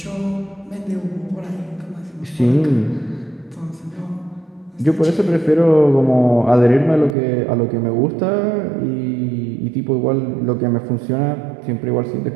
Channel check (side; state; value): left; drops out; at 7.2 s